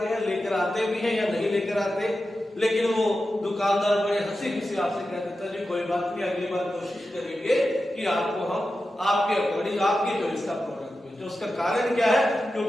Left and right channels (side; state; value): both; normal; correlation 0.92